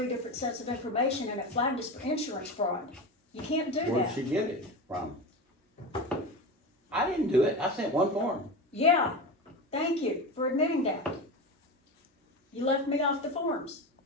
different sets of information, and it flagged us for insurance fraud. You can't do Where'd that. she get it from? I didn't do it, I sent one form. Yeah, thank you for admitting that. You left me off the forms.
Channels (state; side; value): normal; both; correlation 0.24